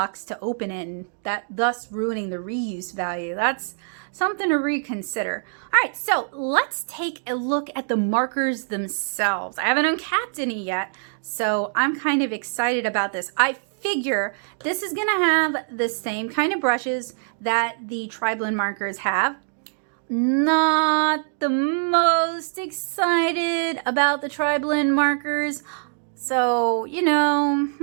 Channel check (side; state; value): left; silent; digital silence